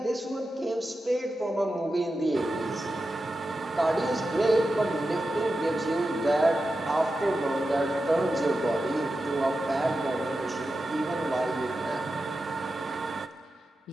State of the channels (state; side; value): normal; both; correlation 0.91